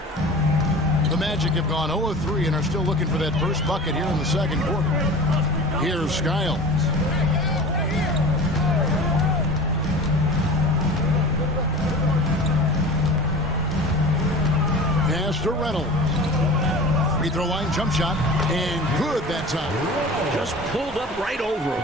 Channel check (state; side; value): normal; both; correlation 0.37